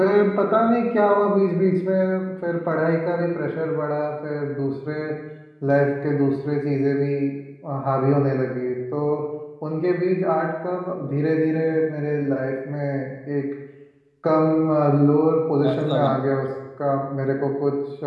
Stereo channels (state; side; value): identical; both; correlation 1.00